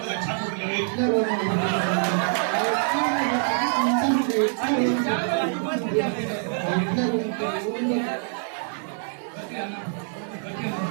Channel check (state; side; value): silent; left; 62 dB below the other